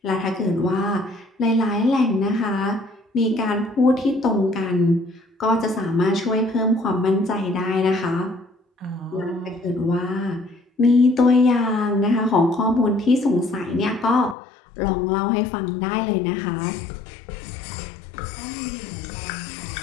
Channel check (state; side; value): drops out; right; at 14.4 s